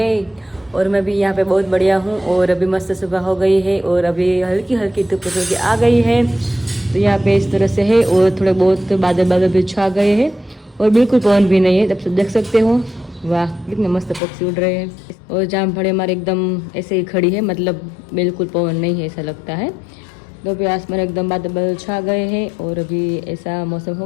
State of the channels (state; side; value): drops out; right; at 14.2 s